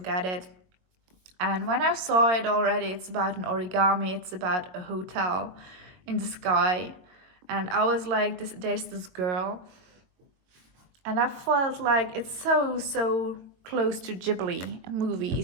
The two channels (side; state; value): left; late; 22 ms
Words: it. And when I saw it already, it's about an origami, it's about a hotel in the sky. And I was like, there's this girl, and I felt like it's so close to Ghibli